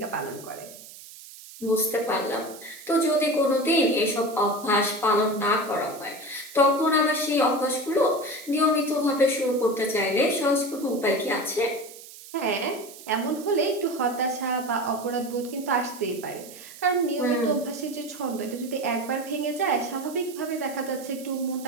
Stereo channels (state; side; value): noise; right; hiss, 17 dB below the sound